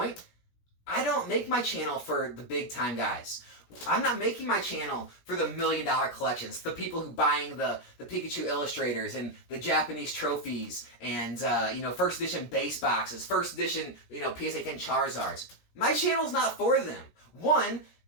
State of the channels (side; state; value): right; late; 17 ms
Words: I don't make my channel for the big time guys. I'm not making my channel for the $1 million collections, the people who buying the Pikachu illustrators and the Japanese trophies and first edition base boxes, first edition PSA 10 Charizards. My channel's not for them. One,